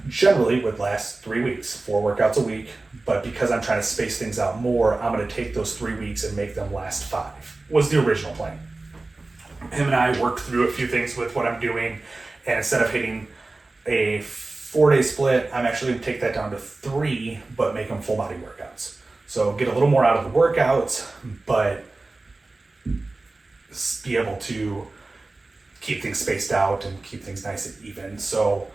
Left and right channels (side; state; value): left; quieter; 3.3 dB